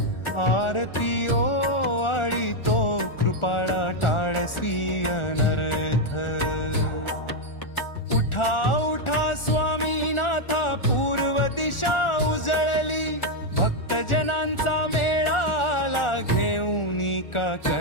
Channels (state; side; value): late; right; 1.4 ms